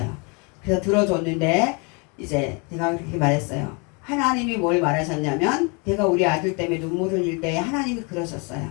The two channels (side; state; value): right; quieter; 32.3 dB